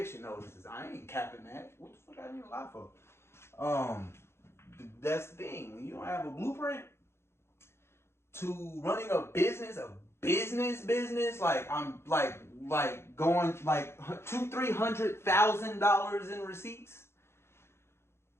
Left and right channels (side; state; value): right; late; 0.12 ms